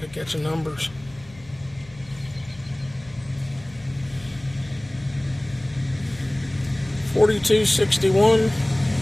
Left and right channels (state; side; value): noise; left; hum, 22 dB below the sound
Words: to get your numbers. $42.61,